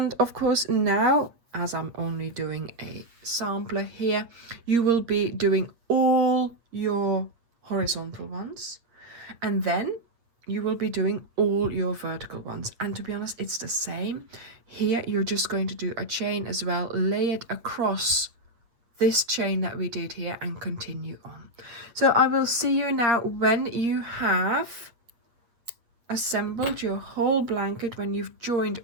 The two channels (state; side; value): late; left; 8.5 ms